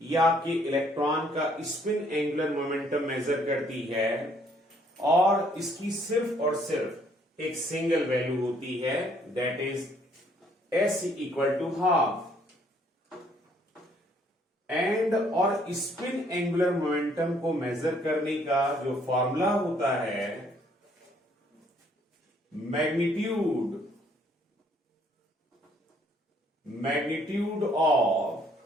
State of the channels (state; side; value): normal; both; correlation 0.65